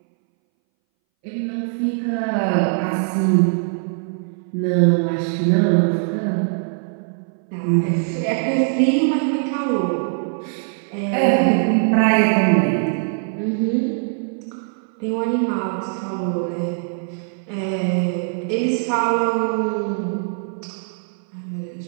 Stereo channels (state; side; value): silent; left; 62 dB below the other